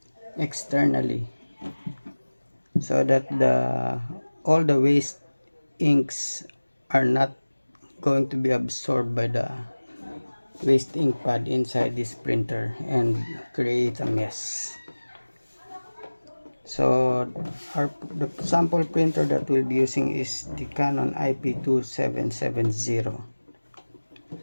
externally, so that all the waste inks are not going to be absorbed by the waste ink pad inside this printer and create a mess. So the sample printer that we'll be using is the Canon IP2770.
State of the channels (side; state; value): both; inverted; correlation -1.00